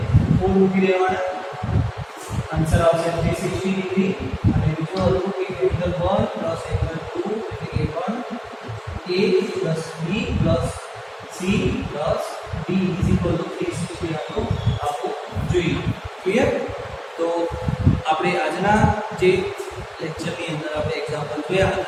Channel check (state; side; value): identical; both; correlation 1.00